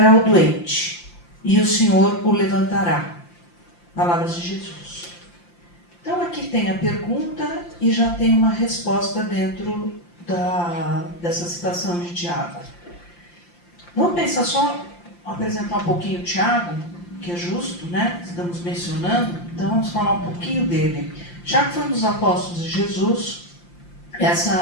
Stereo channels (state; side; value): late; right; 5.8 ms